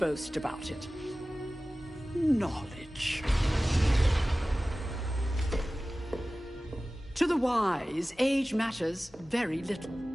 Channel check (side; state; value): both; normal; correlation 0.97